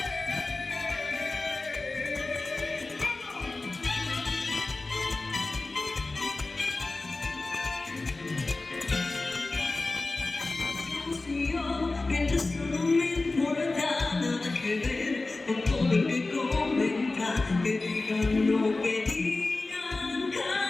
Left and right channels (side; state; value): right; quieter; 3.3 dB